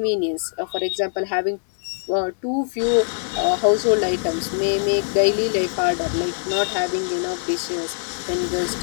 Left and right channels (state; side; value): silent; right; digital silence